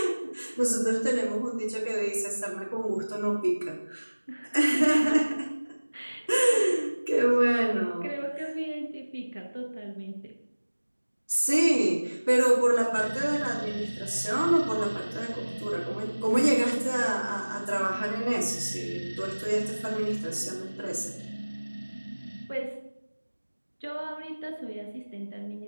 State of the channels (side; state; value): both; inverted; correlation -1.00